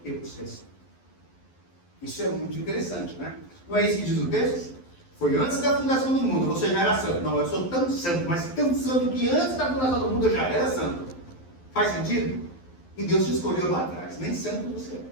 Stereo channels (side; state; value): right; late; 12 ms